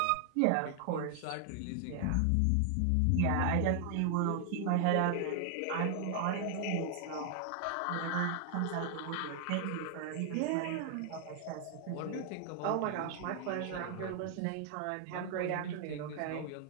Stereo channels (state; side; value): different; both; correlation 0.00